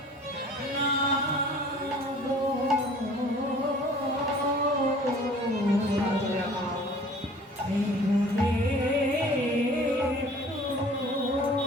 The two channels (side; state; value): both; normal; correlation 0.49